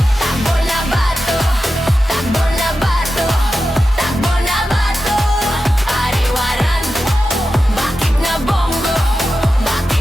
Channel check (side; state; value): both; normal; correlation 0.92